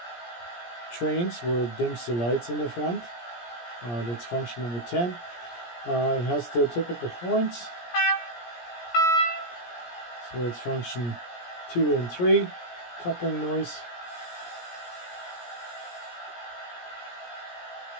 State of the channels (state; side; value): late; right; 17 ms